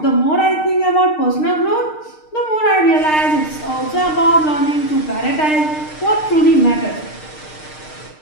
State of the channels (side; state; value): right; late; 6.5 ms